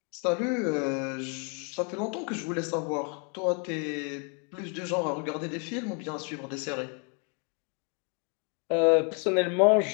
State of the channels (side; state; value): right; quieter; 37.4 dB